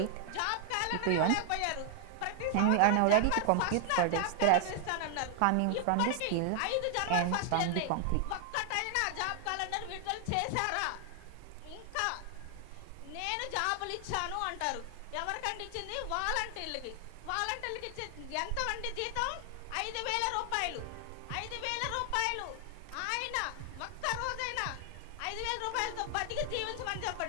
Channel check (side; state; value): both; different; correlation 0.00